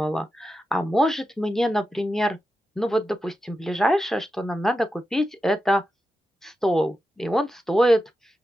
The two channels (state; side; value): normal; both; correlation 0.90